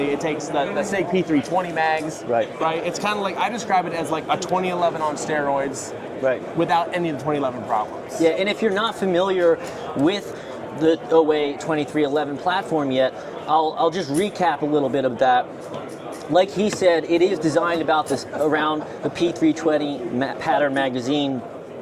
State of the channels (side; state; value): both; identical; correlation 1.00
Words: It takes the SIG P320 mags. Right. It's kind of like, I describe it as like a 2011 on steroids. Right. Without any of the 2011 problems. Yeah, and if you're not familiar with the OA 2311 platform yet, I'll just recap a little bit of that. Like he said, it is designed about this around the P320 pattern magazine.